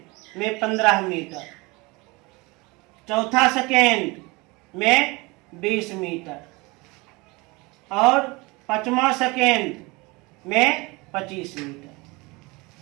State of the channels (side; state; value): left; quieter; 25.0 dB